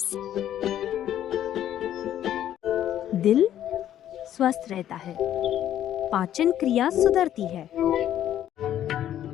दिल स्वस्थ रहता है, पाचन क्रिया सुधरती है।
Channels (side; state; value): right; quieter; 11.3 dB